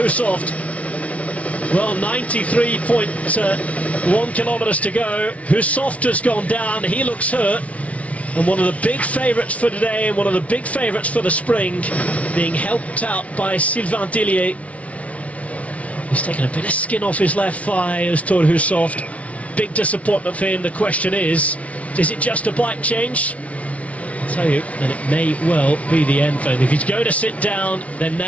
Well, 93.1 kilometres to go. Hushovd has gone down. He looks hurt. And one of the big favourites for today, and one of the big favourites for the spring, being helped out by Sylvain Dillier. He's taken a bit of skin off his left thigh as Thor Hushovd. Big disappointment for him. The question is it just a bike change? I'll tell you, and it may well be the end for him. If he's going to sit down, then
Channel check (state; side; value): late; right; 0.066 ms